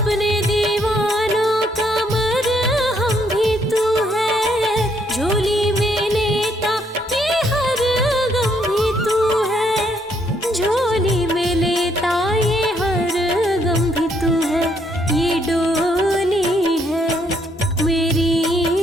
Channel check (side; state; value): both; normal; correlation 0.71